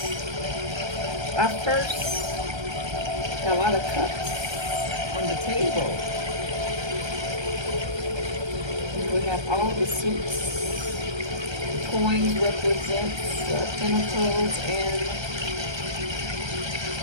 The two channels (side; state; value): left; late; 1.3 ms